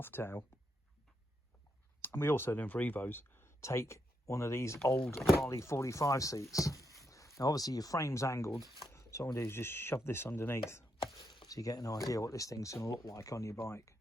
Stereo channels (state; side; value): normal; both; correlation 0.81